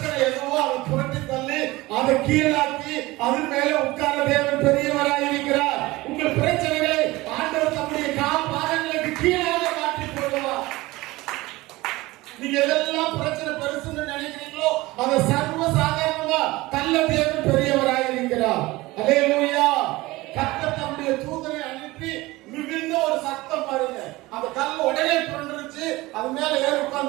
எதுவோ அதை புரட்டி தள்ளி அதை கீழாக்கி அதன் மேல உட்கார்ந்த தேவன் பெரியவராய் இருக்கிறார். உங்கள் பிரச்சனைகளை ஆண்டவர் தம்முடைய பாதங்களுக்கு கீழாக மாற்றி போடுவார். நீங்க எதெல்லாம் பிரச்சனை பெருசுன்னு நினைக்கிறீங்களோ நல்ல தேவன் பெரியவராய் இருக்கிறார். அல்லேலூயா. கர்த்தர் தம்முடைய தூதனை அனுப்பி மிகுந்த ஒரு சத்தம் பாருங்க. அந்த கல் உடனே புரண்டுருச்சு. அது மேல ஏறி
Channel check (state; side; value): quieter; left; 20.1 dB